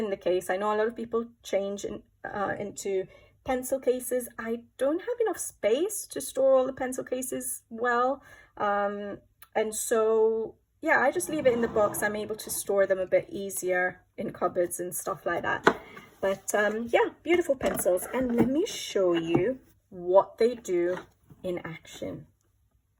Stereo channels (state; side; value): identical; both; correlation 1.00